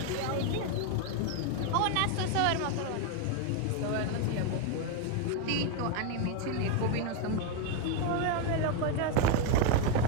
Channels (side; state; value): both; different; correlation 0.01